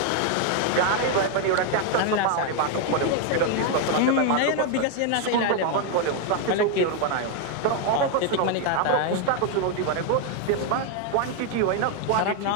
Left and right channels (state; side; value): different; both; correlation 0.01